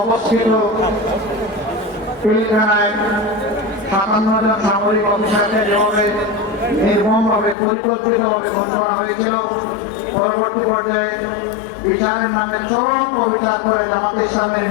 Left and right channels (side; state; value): right; drops out; at 7.6 s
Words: অবস্থিত পিলখানায় 57 জন সামরিক অফিসারকে যেভাবে নির্মমভাবে পরিকল্পিতভাবে খুন করা হয়েছিল, পরবর্তী পর্যায়ে বিচারের নামে চরম অবিচার করে জামাত ইসলামের